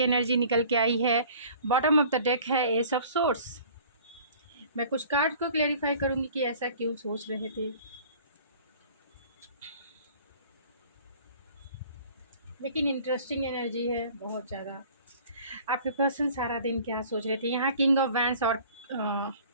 निकल के आई है। बॉटम ऑफ द डेक है एस ऑफ सोर्स। मैं कुछ कार्ड को क्लेरिफाई करूंगी कि ऐसा क्यों सोच रहे थे। लेकिन इंटरेस्टिंग एनर्जी है बहुत ज़्यादा। आपके पर्सन सारा दिन क्या सोच रहे थे। यहाँ किंग ऑफ वैंस और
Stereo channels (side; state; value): both; inverted; correlation -0.49